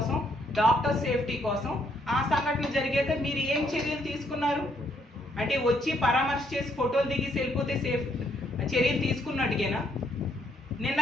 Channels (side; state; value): both; normal; correlation 0.71